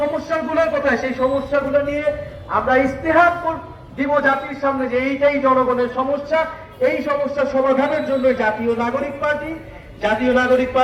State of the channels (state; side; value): identical; both; correlation 1.00